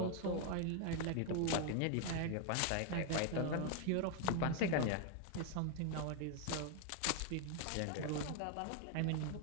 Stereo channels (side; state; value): both; different; correlation 0.01